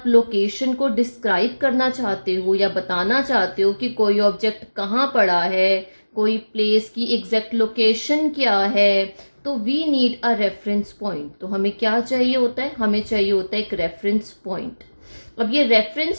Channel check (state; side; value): inverted; both; correlation -1.00